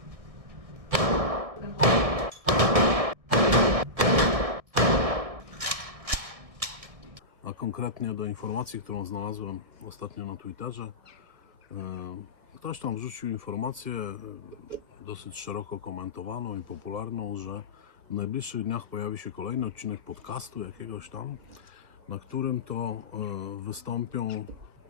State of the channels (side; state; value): left; late; 1.6 ms